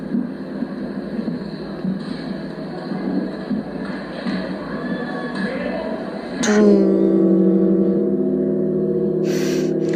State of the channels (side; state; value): both; identical; correlation 1.00